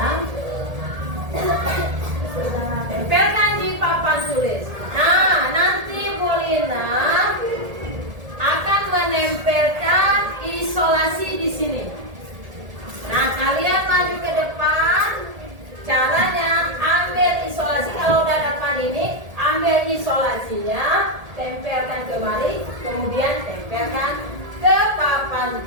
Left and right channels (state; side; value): late; left; 1.8 ms